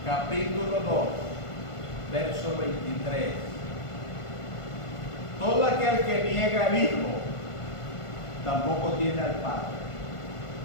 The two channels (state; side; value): late; right; 1.5 ms